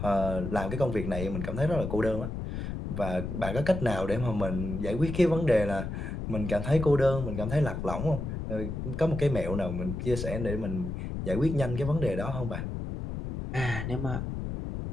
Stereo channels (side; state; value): left; noise; rumble, 5 dB below the sound